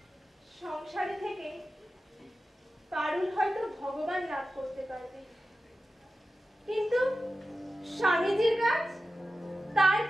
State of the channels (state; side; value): normal; both; correlation 0.93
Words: সংসারে থেকে পারুল হয়তো ভগবান লাভ করতে পারবে, কিন্তু স্বামীজির কাজ তার